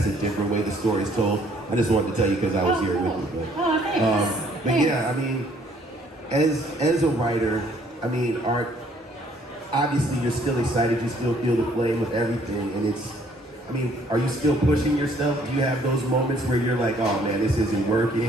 a different way the story is told. I just wanted to tell you because I was here with you. Thanks. But yeah, as a writer, art, obviously you're still excited, you still feel the flame with everything, and are you still pushing yourself? Do you have those moments where you're like, oh man, this isn't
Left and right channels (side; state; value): both; normal; correlation 0.62